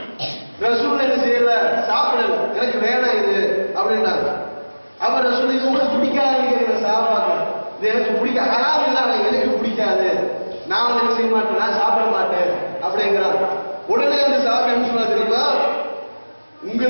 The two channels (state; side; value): inverted; both; correlation -1.00